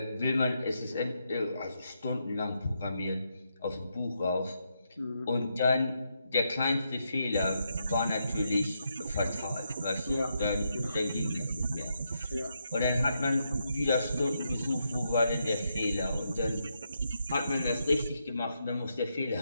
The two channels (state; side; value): inverted; both; correlation -0.81